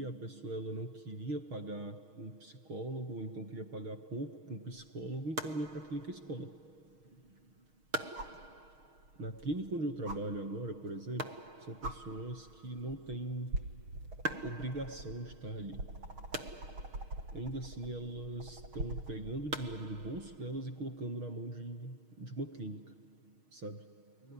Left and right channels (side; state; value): left; late; 6.4 ms